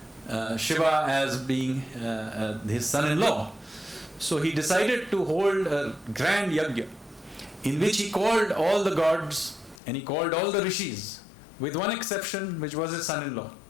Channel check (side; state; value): right; drops out; at 9.8 s